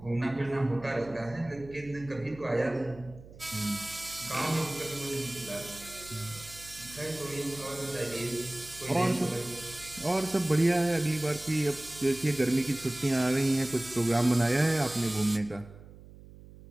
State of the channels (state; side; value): noise; right; hum, 19 dB below the sound